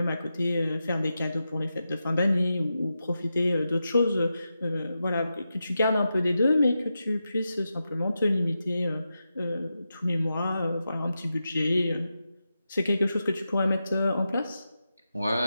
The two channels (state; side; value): inverted; both; correlation -0.89